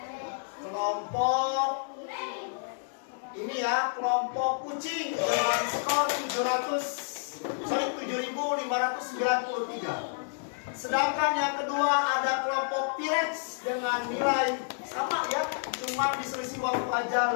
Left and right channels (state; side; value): silent; right; digital silence